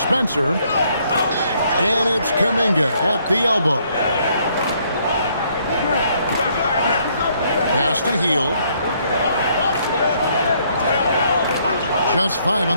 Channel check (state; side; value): inverted; both; correlation -0.68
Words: And it's Kuminga at the elbow. Pass to Hield. Just 5 on